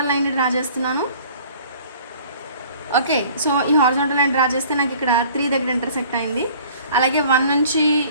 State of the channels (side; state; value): both; inverted; correlation -0.51